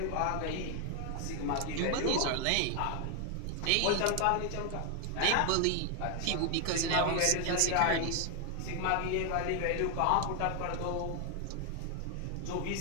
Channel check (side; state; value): both; different; correlation 0.01